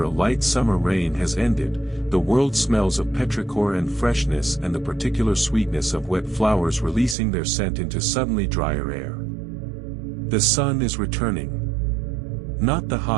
a light summer rain has ended, the world smells of petrichor and freshness and the particular sweetness of wet flowers releasing their scent into suddenly drier air. The sun is returning. Not the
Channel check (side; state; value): left; drops out; at 7.2 s